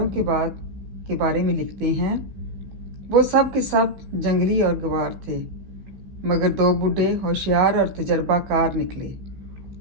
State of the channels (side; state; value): left; late; 16 ms